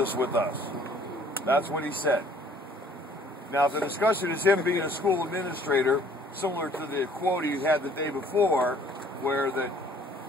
with us. That's what he said. Now, the discussion is him being a school administrator, similar to the quote he had the day before, where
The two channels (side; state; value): both; normal; correlation 0.56